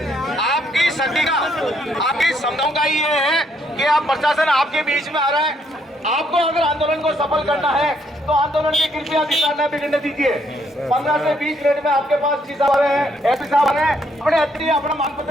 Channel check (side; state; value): both; normal; correlation 0.71